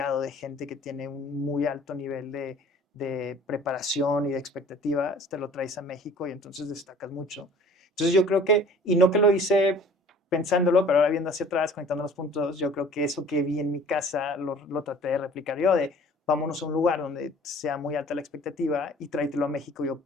de gente que tiene un muy alto nivel de preparación y de expectativas, te lo traes a México y entonces destacas mucho. Entonces yo creo que, y no que lo hice pensándolo, pero ahora viendo hacia atrás, conectando los puntos, yo creo que eso que vi en mi casa lo traté de replicar yo, de vámonos a un lugar donde sea muy alta la expectativa y tráetelo a México y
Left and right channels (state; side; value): normal; both; correlation 0.49